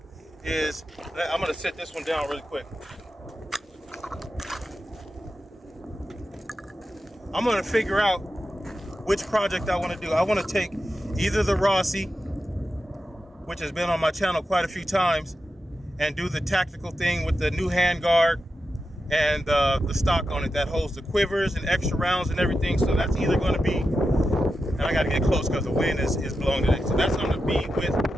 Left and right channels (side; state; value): both; normal; correlation 0.90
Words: is, I'm gonna set this one down really quick. I'm gonna figure out which project I want to do. I want to take either the Rossi, which has been on my channel quite a few times, and do the tactical thing with the new handguard and the stock on it that holds the quivers and extra rounds and everything. So that's either going to be, and I got to get close because the wind is blowing today. So that's going to be with